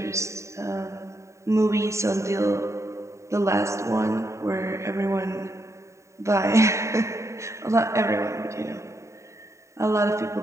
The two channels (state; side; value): late; left; 0.14 ms